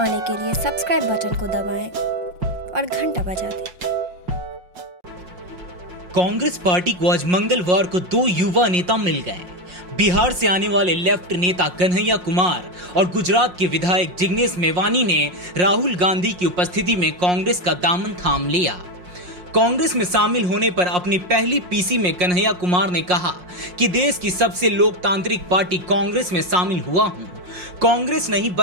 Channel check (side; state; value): left; late; 5.6 ms